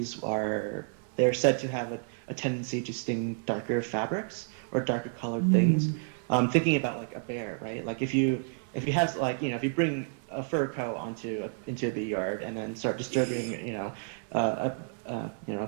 they're said to have a tendency to sting darker fabrics or darker colored things. Thinking about like a bear, right? Like if you bring a fur coat into a bee yard and then start disturbing, a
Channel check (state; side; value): silent; left; 58 dB below the other